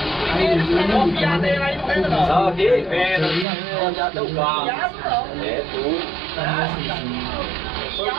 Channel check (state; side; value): drops out; left; at 3.5 s